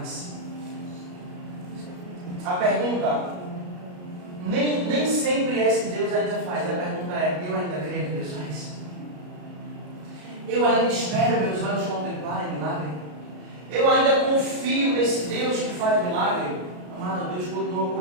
A pergunta, nem sempre é se Deus ainda faz, a pergunta é, eu ainda creio que Deus faz? Eu ainda espero meus olhos contemplarem milagre? Eu ainda confio nesse Deus que faz milagre? Amado, Deus continua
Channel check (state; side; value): late; left; 33 ms